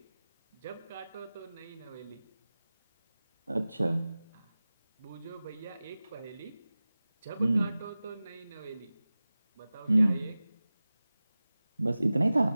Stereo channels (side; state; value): both; inverted; correlation -0.97